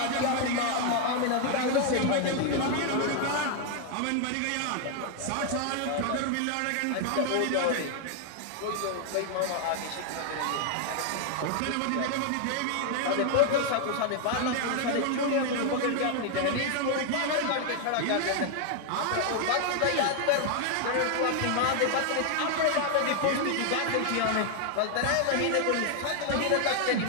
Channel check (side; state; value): both; different; correlation 0.00